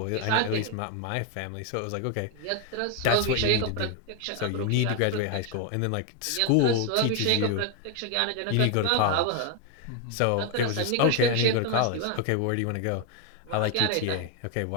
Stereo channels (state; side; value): different; both; correlation 0.01